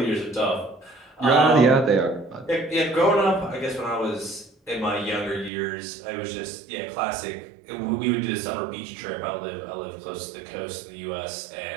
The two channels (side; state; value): left; drops out; at 5.5 s